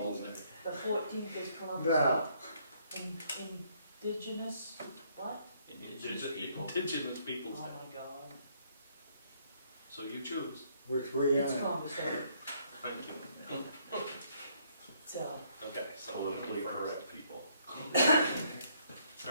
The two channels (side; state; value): both; inverted; correlation -0.68